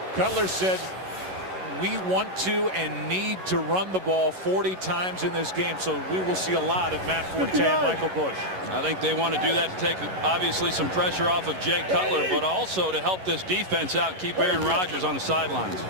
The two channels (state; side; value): late; left; 11 ms